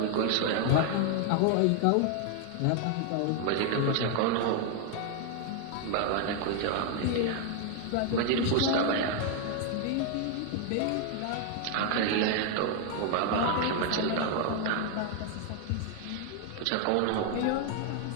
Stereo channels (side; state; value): both; different; correlation 0.00